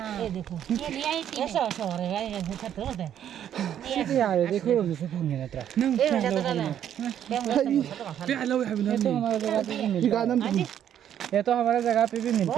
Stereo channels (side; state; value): left; quieter; 10.1 dB